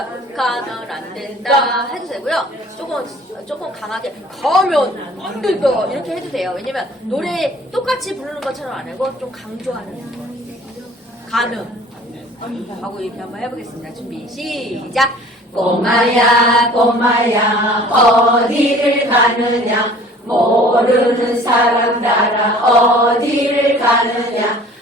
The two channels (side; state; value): both; normal; correlation 0.49